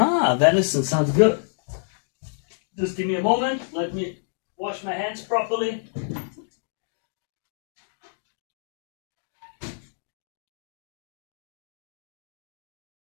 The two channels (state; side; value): silent; right; digital silence